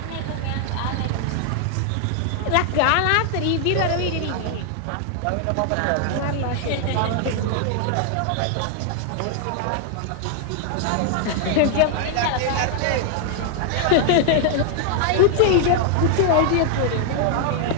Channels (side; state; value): both; different; correlation 0.00